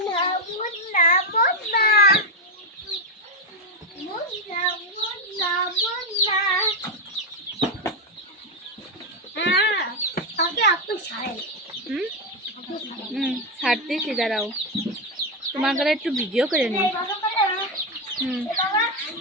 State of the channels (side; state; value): both; normal; correlation 0.06